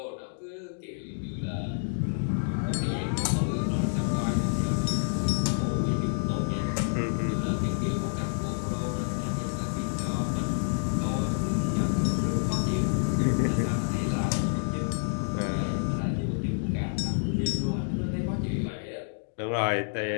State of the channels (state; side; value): silent; right; digital silence